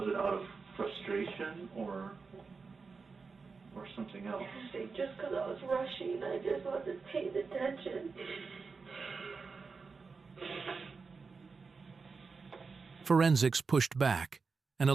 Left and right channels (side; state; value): left; quieter; 4.7 dB